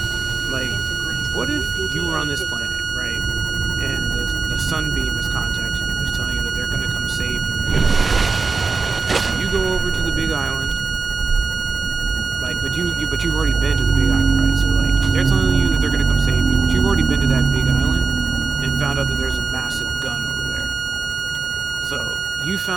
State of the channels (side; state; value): left; quieter; 4.3 dB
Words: Like, what if you were on this planet, right? And the sunbeam is contacting you, is telling you that they're gonna come save you. You go over to the big island, like, but you've already been to the big island, right? So like, they're telling you that they're gonna come save you, but you've already been to that big island and found out that there's a massive gun over there. So you